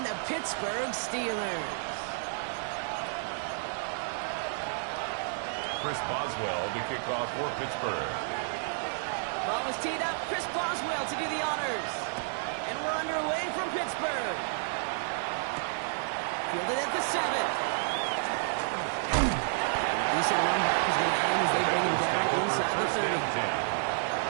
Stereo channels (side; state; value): left; silent; 57 dB below the other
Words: the Pittsburgh Steelers. Chris Boswell to kick off for Pittsburgh. Ball was teed up. Chris Boswell to do the honors. And we're underway from Pittsburgh. Fielded at the 7. Decent run back is going to end as they bring him down inside the 30.